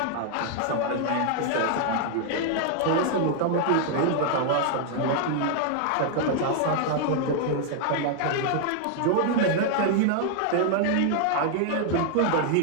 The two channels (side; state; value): both; different; correlation 0.00